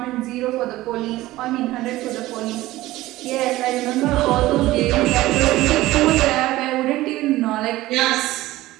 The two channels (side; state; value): left; quieter; 17.1 dB